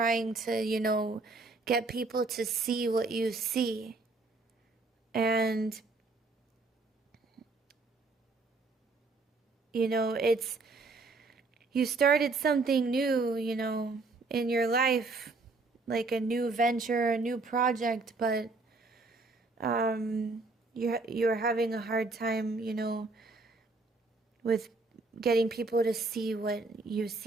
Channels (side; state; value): left; quieter; 3.6 dB